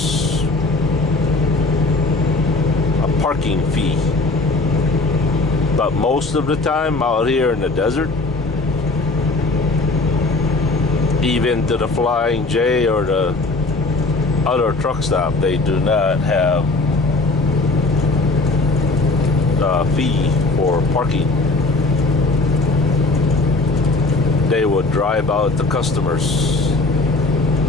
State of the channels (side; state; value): right; quieter; 3.2 dB